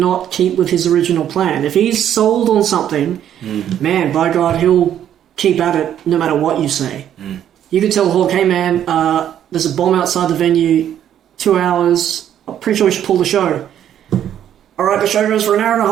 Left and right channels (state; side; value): quieter; left; 10.3 dB